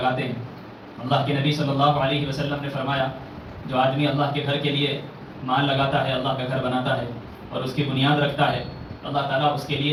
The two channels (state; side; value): identical; both; correlation 1.00